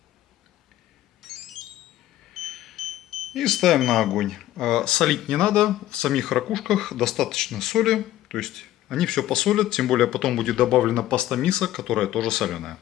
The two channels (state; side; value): quieter; right; 13.9 dB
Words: И ставим на огонь. Солить не надо. В самих ракушках достаточно соли. То есть они все посолят. Тем более потом будет добавлена паста мисо, которая тоже соленая.